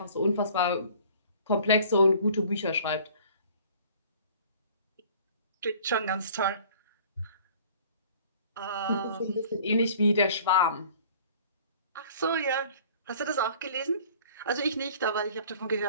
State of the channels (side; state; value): both; inverted; correlation -0.51